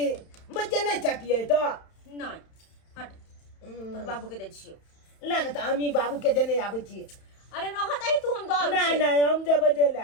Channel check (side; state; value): right; late; 31 ms